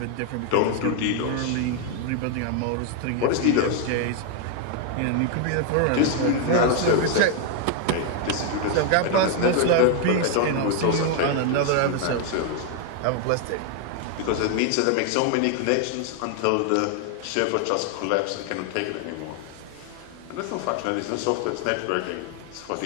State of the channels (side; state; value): both; different; correlation 0.00